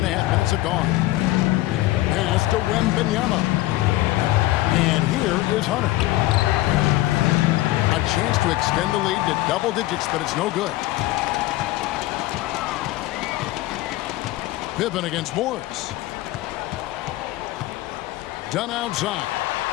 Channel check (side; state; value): right; quieter; 17.3 dB